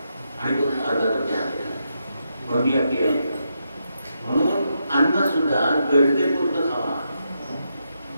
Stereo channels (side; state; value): both; inverted; correlation -0.83